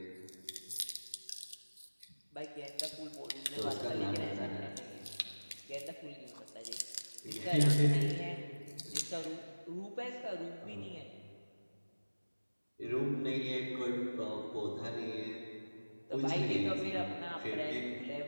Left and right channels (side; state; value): both; inverted; correlation -1.00